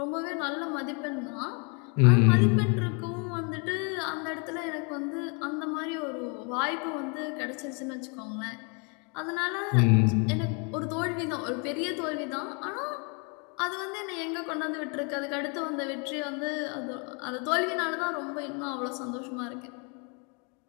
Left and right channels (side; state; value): right; quieter; 34.9 dB